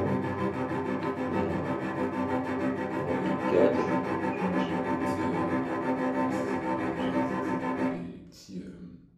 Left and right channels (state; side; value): identical; both; correlation 1.00